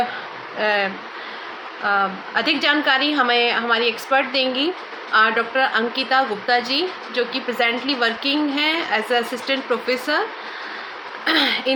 अधिक जानकारी हमें हमारी एक्सपर्ट देंगी डॉक्टर अंकिता गुप्ता जी, जो कि प्रेजेंटली वर्किंग हैं as assistant professor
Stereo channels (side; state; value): both; identical; correlation 1.00